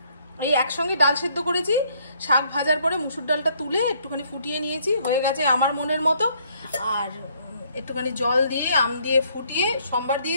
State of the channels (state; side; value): inverted; both; correlation -0.66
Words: এই একসঙ্গে ডাল সেদ্ধ করেছি, শাক ভাজার পরে মুসুর ডালটা তুলে একটুখানি ফুটিয়ে নিয়েছি, হয়ে গেছে আমার মনের মতো। আর একটুখানি জল দিয়ে আম দিয়ে ফুটিয়ে সম্বার